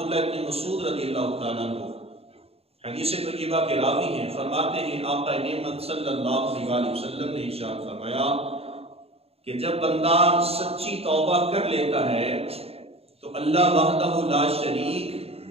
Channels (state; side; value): late; left; 0.29 ms